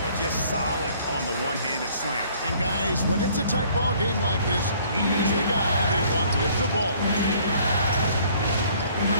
just solid on the one-handed slam. And guys, when it's a tight ball game like this, he's the guy they want with the ball.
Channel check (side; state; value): both; inverted; correlation -0.58